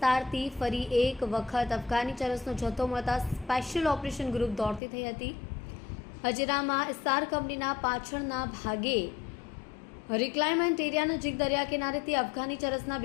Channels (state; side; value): drops out; right; at 4.8 s